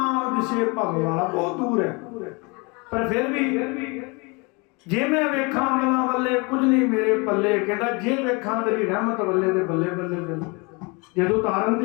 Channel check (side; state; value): right; quieter; 29.1 dB